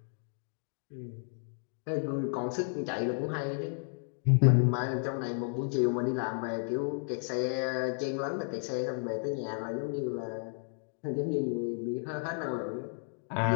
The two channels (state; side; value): silent; right; 56 dB below the other